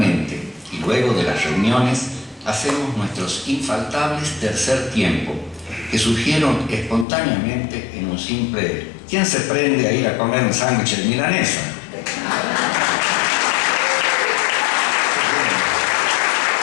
y luego de las reuniones, hacemos nuestros infaltables tercer tiempo, que surgieron espontáneamente en un simple ¿quién se prende a ir a comer un sándwich de milanesa?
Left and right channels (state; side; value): drops out; right; at 7.1 s